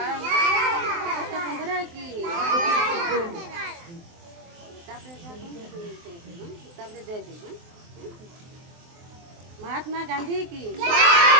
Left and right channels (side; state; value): left; late; 23 ms